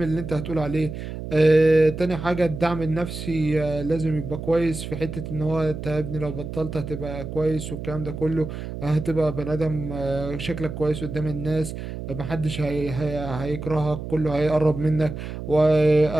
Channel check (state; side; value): noise; right; hum, 8 dB below the sound